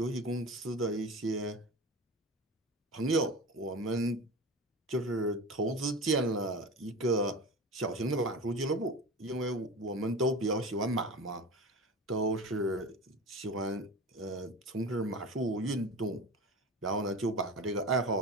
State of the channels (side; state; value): both; normal; correlation 0.30